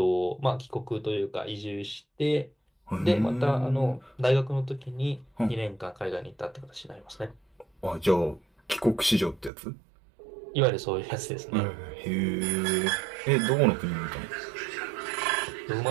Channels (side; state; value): left; drops out; at 9.5 s